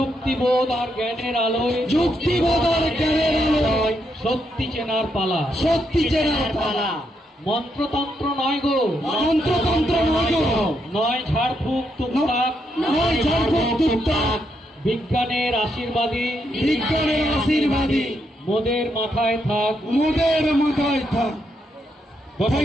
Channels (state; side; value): normal; both; correlation 0.79